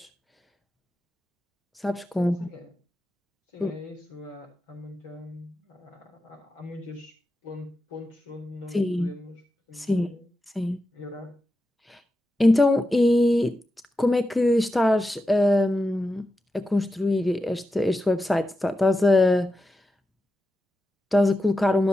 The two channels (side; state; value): both; normal; correlation 0.90